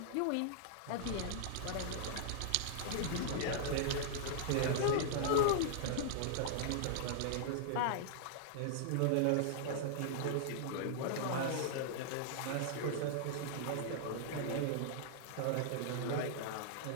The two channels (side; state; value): both; different; correlation -0.01